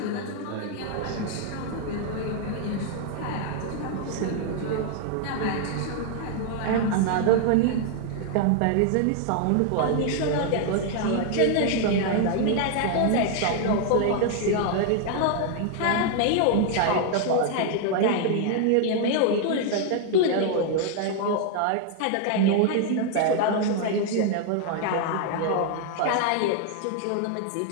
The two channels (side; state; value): both; different; correlation 0.00